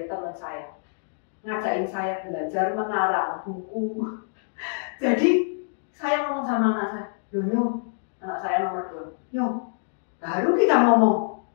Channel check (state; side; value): silent; right; digital silence